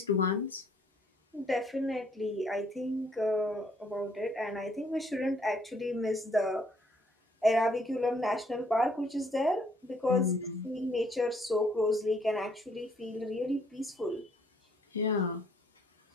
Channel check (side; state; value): both; normal; correlation 0.65